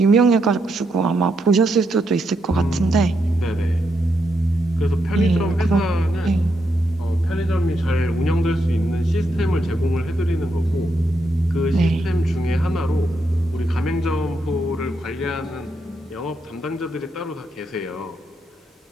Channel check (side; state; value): both; normal; correlation 0.80